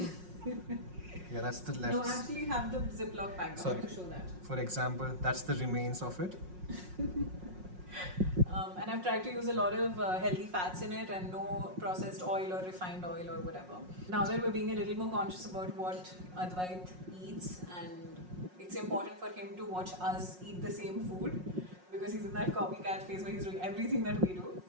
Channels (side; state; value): left; late; 5.5 ms